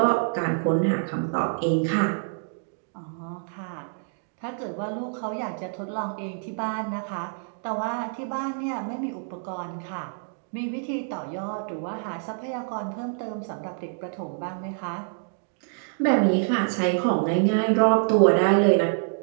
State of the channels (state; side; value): silent; left; digital silence